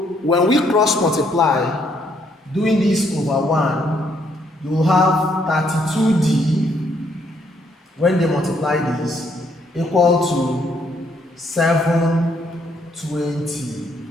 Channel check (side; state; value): both; normal; correlation 0.70